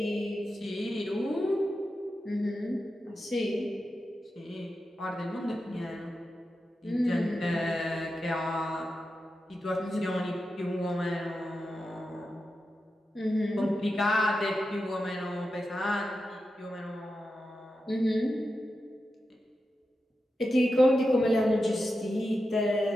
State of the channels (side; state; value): both; normal; correlation 0.90